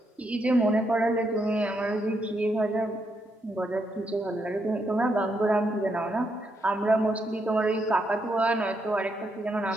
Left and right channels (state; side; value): normal; both; correlation 0.79